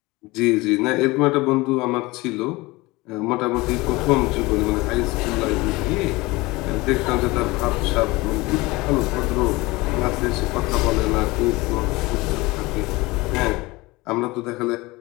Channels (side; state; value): right; quieter; 22.0 dB